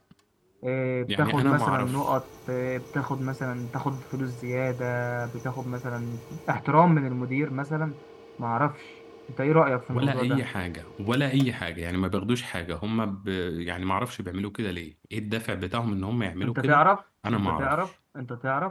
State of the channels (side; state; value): both; identical; correlation 1.00